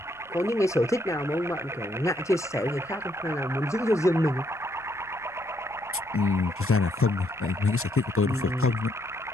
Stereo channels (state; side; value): noise; left; rumble, 29 dB below the sound